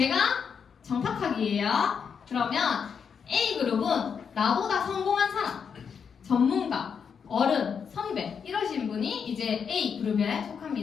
정탁하기예요. 그러면 A그룹은 나보다 성공한 사람, 전문가, 어른, 선배 이러신 분이 이제 A그룹에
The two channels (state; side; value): quieter; right; 6.7 dB